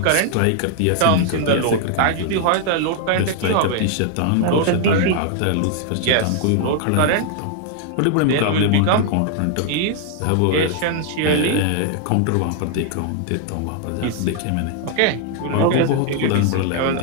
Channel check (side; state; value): both; different; correlation 0.00